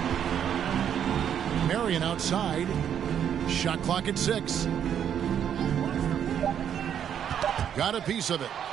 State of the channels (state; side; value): quieter; left; 9.0 dB